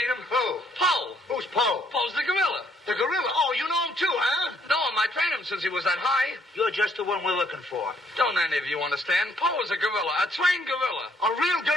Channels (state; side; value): normal; both; correlation 0.67